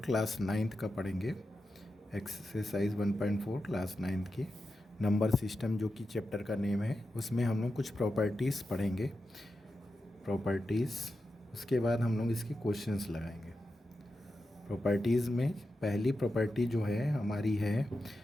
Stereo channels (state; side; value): normal; both; correlation 0.90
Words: क्लास 9th का पढ़ेंगे। एक्सरसाइज 1.4 क्लास 9th की नंबर सिस्टम जो कि चैप्टर का नेम है, उसमें हम लोग कुछ प्रॉपर्टीज़ पढ़ेंगे। प्रॉपर्टीज़, उसके बाद हम लोग इसके क्वेश्चंस लगाएंगे। प्रॉपर्टीज़ में पहली प्रॉपर्टी जो है हमारी है